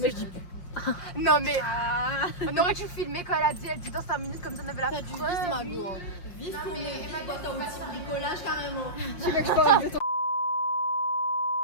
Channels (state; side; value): late; right; 5.6 ms